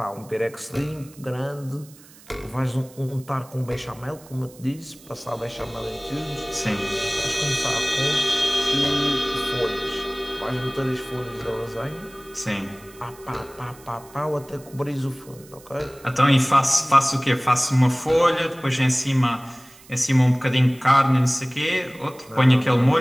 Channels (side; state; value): right; noise; hiss, 23 dB below the sound